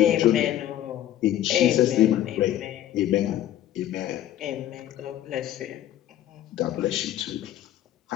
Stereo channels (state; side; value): quieter; right; 12.4 dB